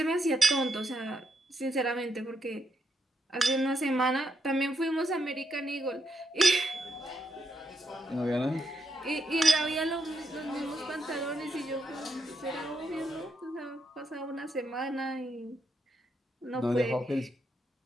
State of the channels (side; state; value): both; normal; correlation 0.80